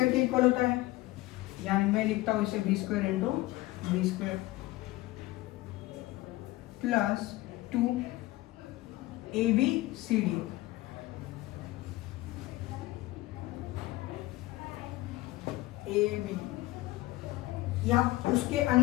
के इक्वल होता है, यानी मैं लिखता हूं इसे B square into B square plus 2 A B C D, A B, यहाँ उसके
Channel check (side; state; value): right; quieter; 18.5 dB